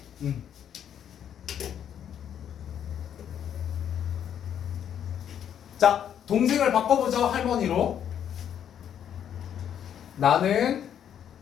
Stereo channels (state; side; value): quieter; right; 9.3 dB